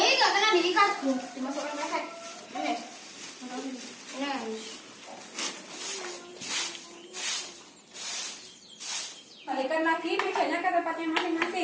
kena diikat tuh. Dimasukkan pesek. Ini. Balikan lagi mejanya ke tempatnya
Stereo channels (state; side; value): identical; both; correlation 1.00